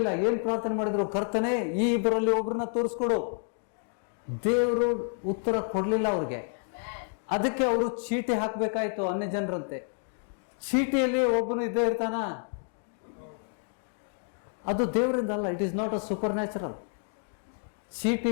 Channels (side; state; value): right; silent; 58 dB below the other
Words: ಏನ್ ಪ್ರಾರ್ಥನೆ ಮಾಡಿದ್ರು? ಕರ್ತನೆ, ಈ ಇಬ್ಬರಲ್ಲಿ ಒಬ್ಬರನ್ನ ತೋರಿಸ್ಕೊಡು. ದೇವರು ಉತ್ತರ ಕೊಡ್ಲಿಲ್ಲ ಅವ್ರಿಗೆ. ಅದಕ್ಕೆ ಅವರು ಚೀಟಿ ಹಾಕ್ಬೇಕಾಯ್ತು ಅನ್ಯ ಜನರಂತೆ. ಚೀಟಿಯಲ್ಲಿ ಒಬ್ಬನು ಇದ್ದೇ ಇರ್ತಾನ? ಅದು ದೇವರಿಂದ ಅಲ್ಲ. It is not a supernatural.